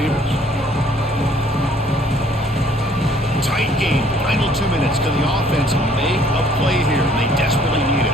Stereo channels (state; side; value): normal; both; correlation 0.60